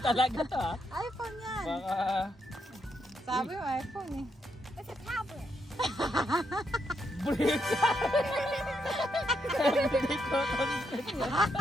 talaga to ha. iPhone yan. Baka... Sabi mo, iPhone eh. It's a tablet. Brick! Everyday content.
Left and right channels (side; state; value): both; normal; correlation 0.79